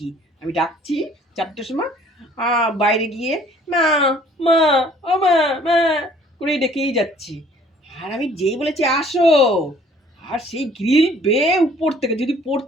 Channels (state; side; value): normal; both; correlation 0.57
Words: আমি ডাকছি 4টের সময়, বাইরে গিয়ে মা, মা, ও মা, মা করে ডেকেই যাচ্ছি। আর আমি যেই বলেছি আসো, আর সেই গ্রিল বেয়ে উপর থেকে যদি